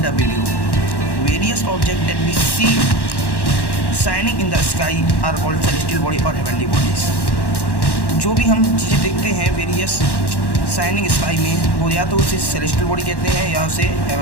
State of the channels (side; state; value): right; late; 1.1 ms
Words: video. Various objects that we see shining in the sky are called celestial body or heavenly bodies. जो भी हम चीज़ें देखते हैं various shining sky में, वो या तो उसे सेलेस्टियल बॉडी कहते हैं या उसे